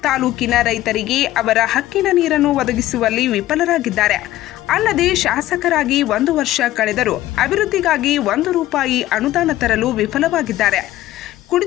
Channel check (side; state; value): right; quieter; 14.9 dB